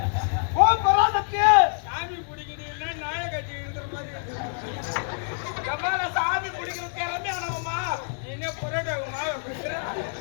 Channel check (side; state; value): right; silent; 61 dB below the other